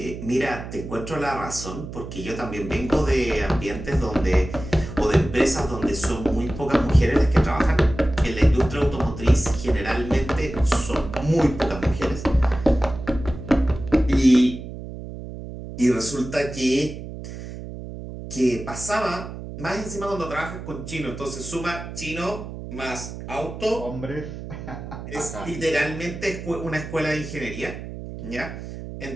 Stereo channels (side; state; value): right; noise; hum, 10 dB below the sound